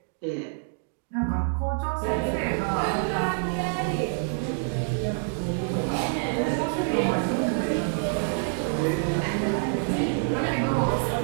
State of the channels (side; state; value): left; silent; 60 dB below the other